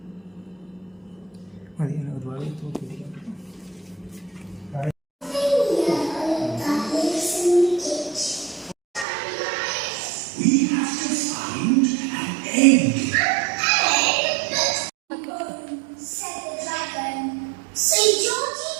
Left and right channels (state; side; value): drops out; left; at 9.1 s